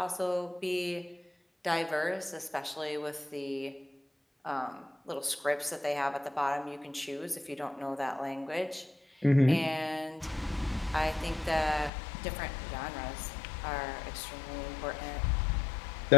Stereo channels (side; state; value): right; drops out; at 11.9 s